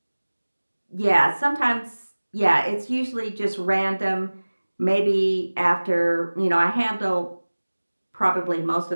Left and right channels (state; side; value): inverted; both; correlation -1.00